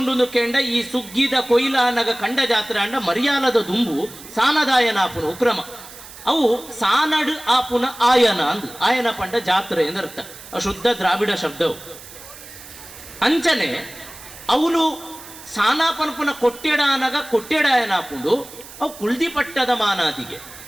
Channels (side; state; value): right; noise; hiss, 17 dB below the sound